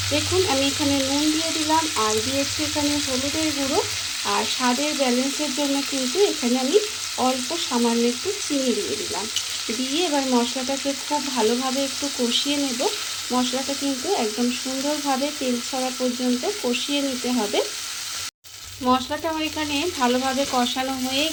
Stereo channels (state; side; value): identical; both; correlation 1.00